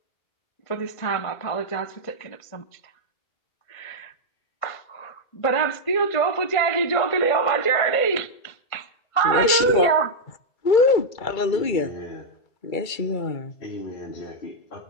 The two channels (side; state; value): right; late; 2.3 ms